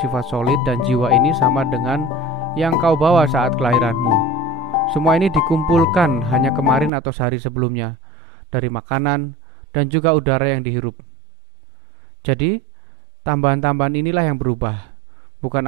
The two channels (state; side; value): drops out; left; at 6.9 s